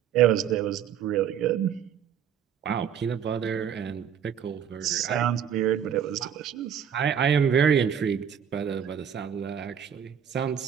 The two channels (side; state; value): left; quieter; 8.5 dB